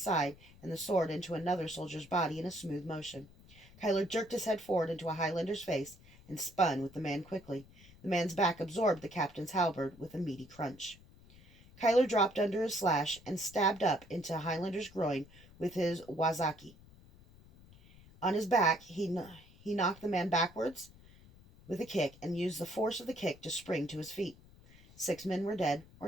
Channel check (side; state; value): left; noise; rumble, 23 dB below the sound